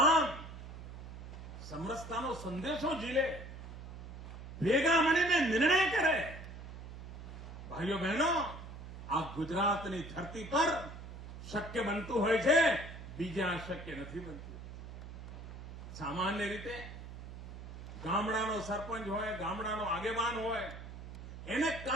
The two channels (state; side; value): noise; right; hum, 11 dB below the sound